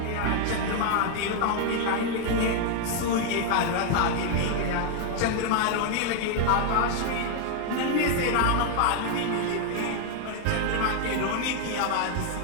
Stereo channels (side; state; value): both; different; correlation 0.00